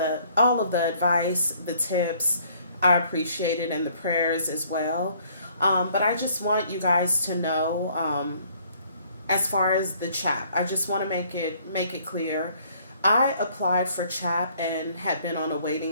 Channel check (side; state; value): both; inverted; correlation -0.61